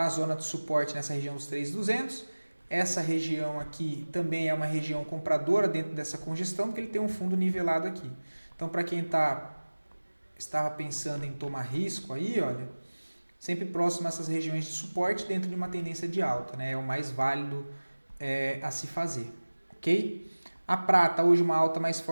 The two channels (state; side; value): inverted; both; correlation -1.00